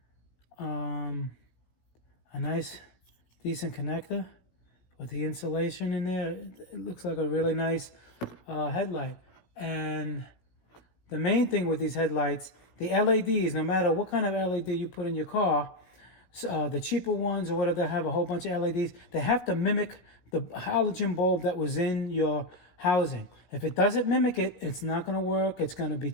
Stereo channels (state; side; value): late; right; 17 ms